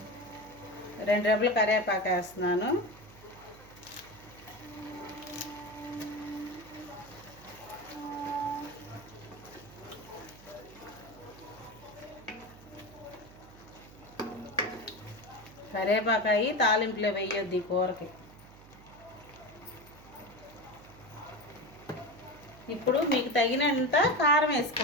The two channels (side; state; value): right; noise; hum, 21 dB below the sound